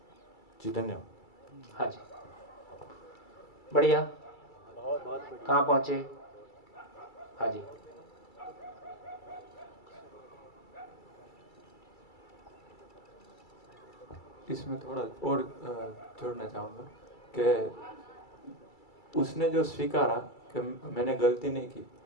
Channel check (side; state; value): right; late; 2.3 ms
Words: जी, धन्यवाद। हाँ जी, बढ़िया। कहाँ पहुंचे? हाँ जी, इसमें थोड़ा और जोड़ना चाहूँगा कि उसने जो स्वीकारा कि मैंने गलती नहीं की,